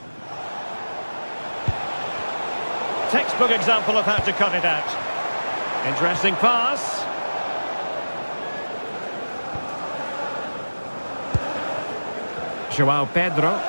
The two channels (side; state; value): both; inverted; correlation -1.00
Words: Textbook example of how to cut it out. Interesting pass. João Pedro.